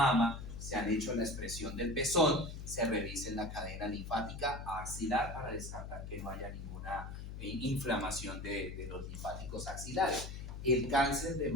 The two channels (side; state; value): left; noise; hum, 8 dB below the sound